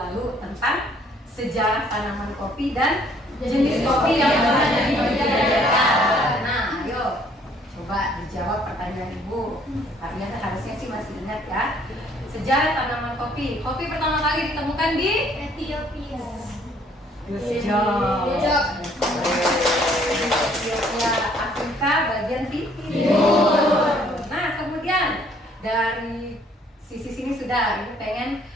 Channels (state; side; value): normal; both; correlation 0.62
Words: tentang sejarah tanaman kopi dan jenis kopi yang ada di Indonesia. Nah, ayo coba dijawab pertanyaan Ibu. Kalian harusnya sih masih ingat ya. Sejarah tanaman kopi. Kopi pertama kali ditemukan di Ethiopia. Ethiopia, Afrika bagian timur. Nah, kemudian dari sisi sini sudah. Ibu pengen